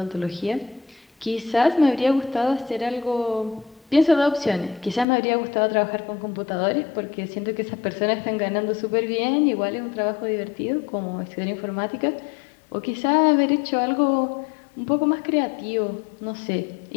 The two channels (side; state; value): right; drops out; at 5.1 s